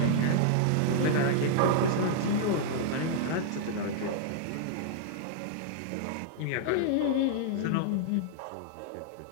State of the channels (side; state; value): both; different; correlation -0.01